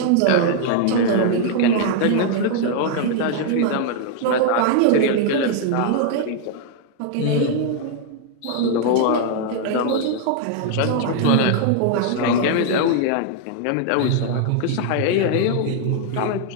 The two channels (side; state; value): both; different; correlation 0.00